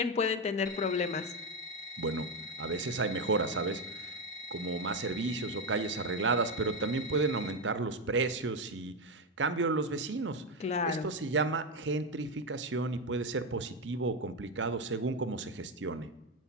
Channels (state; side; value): normal; both; correlation 0.10